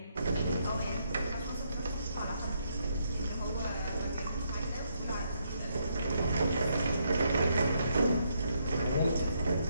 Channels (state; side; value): inverted; both; correlation -0.76